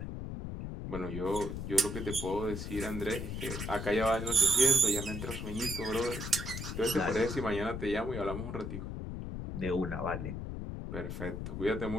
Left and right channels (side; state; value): left; noise; rumble, 5 dB below the sound